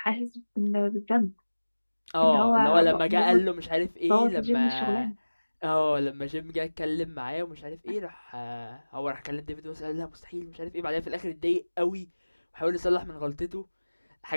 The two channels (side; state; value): both; inverted; correlation -1.00